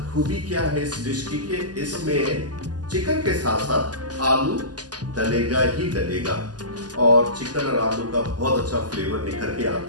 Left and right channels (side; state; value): left; late; 0.69 ms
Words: खूबी क्या है इस डिश की कि इसमें चिकन के साथ साथ आलू डलेगा ही डलेगा और चिकन और आलू का बहुत अच्छा फ्लेवर निखर के